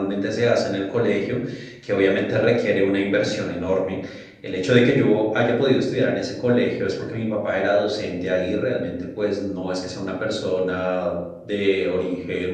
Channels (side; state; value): both; identical; correlation 1.00